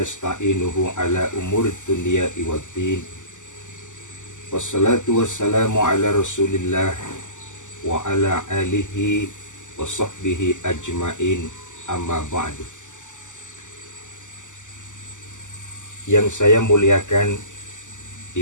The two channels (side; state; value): right; late; 0.86 ms